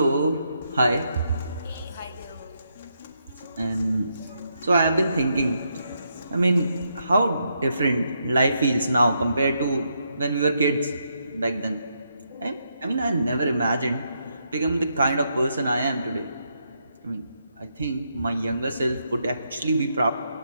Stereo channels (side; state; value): both; inverted; correlation -0.79